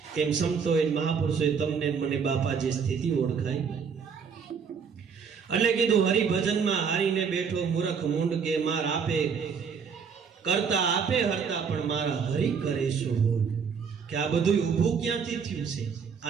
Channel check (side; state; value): left; quieter; 6.2 dB